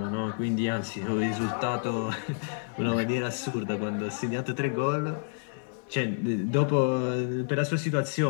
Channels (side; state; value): right; silent; digital silence